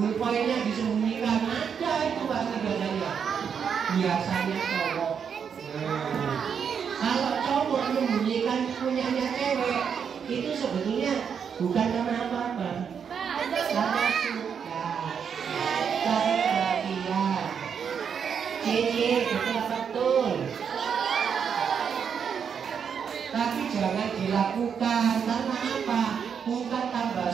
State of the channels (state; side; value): quieter; left; 7.1 dB